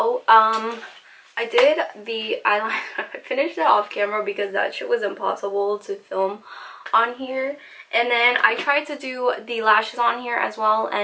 I did the eyeliner. I finished it off camera because that shit was impossible to film on here. And then I tried to do the lashes on here as well,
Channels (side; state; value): both; identical; correlation 1.00